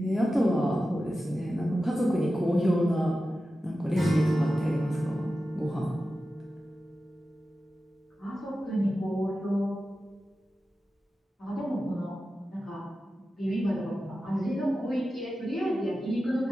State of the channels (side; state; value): both; normal; correlation 0.93